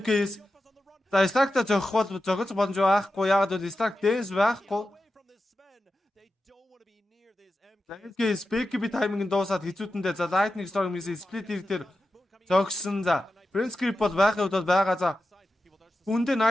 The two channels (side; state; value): both; normal; correlation 0.91